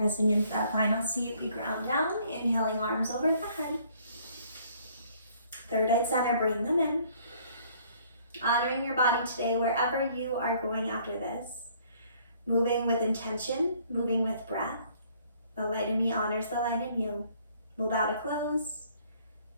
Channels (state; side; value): inverted; both; correlation -0.61